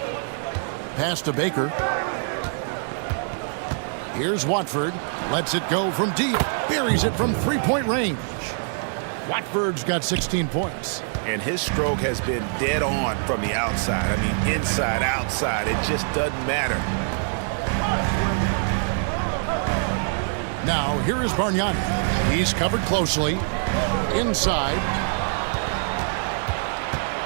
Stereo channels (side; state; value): left; silent; 62 dB below the other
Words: Pass to Baker. Here's Watford. Lets it go from deep. Buries it from 3-point range. Watford's got 16 points. And his stroke has been dead on from the outside. I mean, inside, outside. It just doesn't matter. Now, here is Bargnani. He's covered closely. Inside.